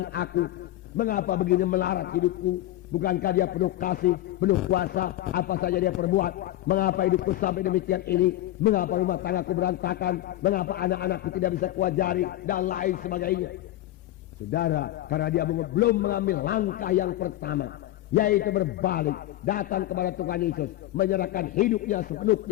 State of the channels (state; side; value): quieter; right; 14.8 dB